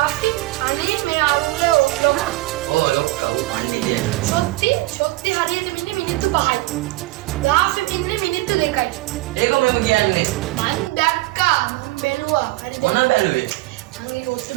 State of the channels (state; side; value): quieter; left; 20.0 dB